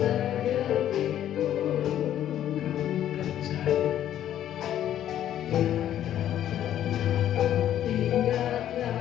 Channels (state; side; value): quieter; right; 11.3 dB